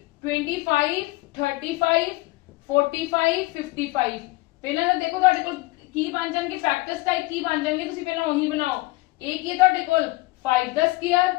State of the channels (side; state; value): right; quieter; 21.4 dB